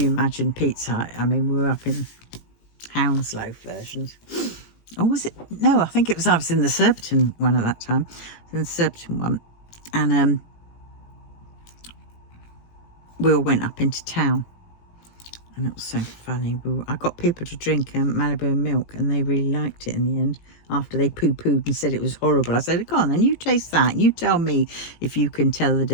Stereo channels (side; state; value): right; late; 18 ms